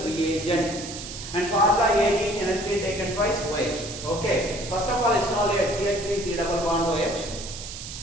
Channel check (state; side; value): noise; right; hiss, 10 dB below the sound